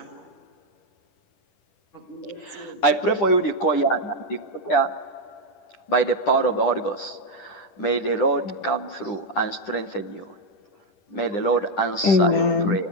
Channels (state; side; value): late; right; 9.9 ms